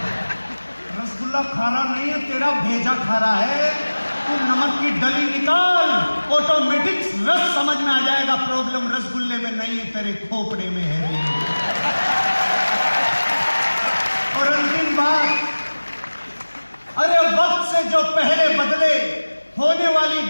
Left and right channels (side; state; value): both; inverted; correlation -1.00